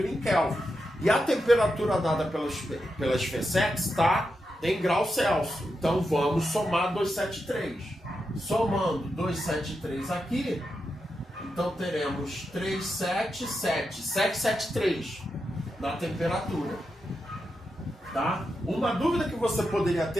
em Kelvin. E a temperatura dada pela SFSEX está em graus Celsius. Então vamos somar 273. Somando 273 aqui, então teremos 773 na temperatura. Tá? Uma dúvida que você poderia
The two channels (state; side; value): normal; both; correlation 0.87